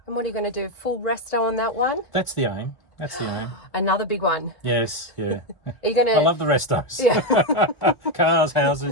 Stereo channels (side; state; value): right; late; 1.5 ms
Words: And what are you going to do? Full resto on that one? That's the aim. That's the aim. Another big one. Yes, yeah. Are you going to... I love the restos. Yeah. Cars,